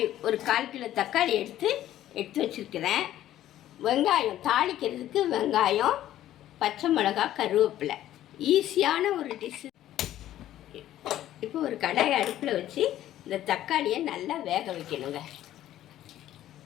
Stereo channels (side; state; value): right; quieter; 12.9 dB